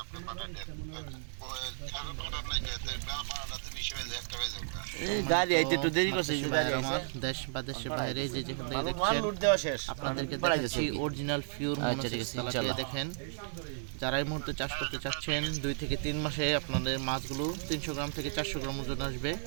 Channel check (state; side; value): silent; left; digital silence